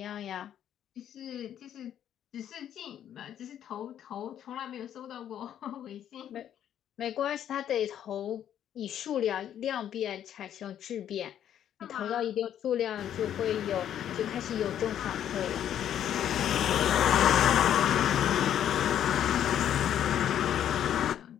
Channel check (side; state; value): right; quieter; 10.3 dB